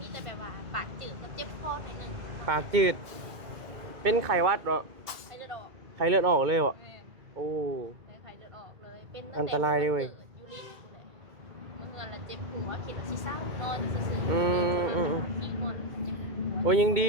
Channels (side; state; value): left; late; 2.2 ms